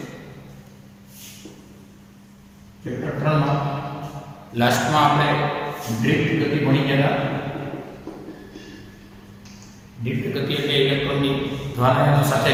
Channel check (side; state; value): both; identical; correlation 1.00